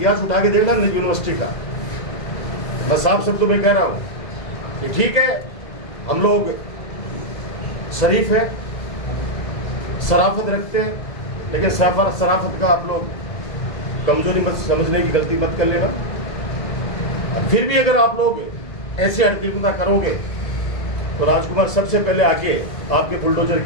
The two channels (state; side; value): late; right; 2.0 ms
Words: उठा के देख लेना यूनिवर्सिटी का। मैं साफ शब्दों में कह रहा हूँ कि ठीक है, हम लोग शरीफ है, शराफत रखते हैं, लेकिन शराफत का आप लोग कमजोरी मत समझने की गलती मत कर लेना। फिर भी अगर आप लोग ऐसे हरकतें करोगे तो राजकुमार सबसे पहले आगे, आपके बुलडोजर